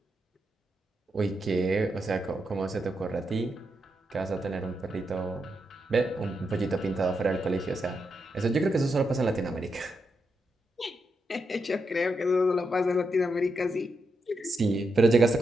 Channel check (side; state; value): both; normal; correlation 0.84